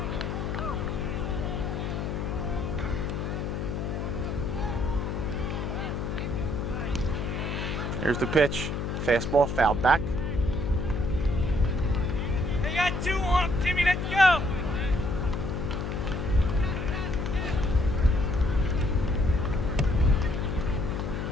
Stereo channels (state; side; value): noise; left; hum, 2 dB below the sound